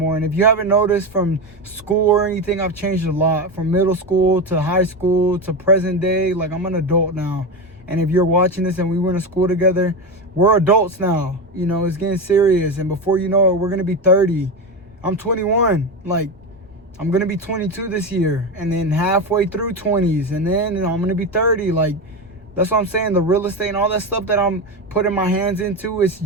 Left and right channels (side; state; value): both; normal; correlation 0.17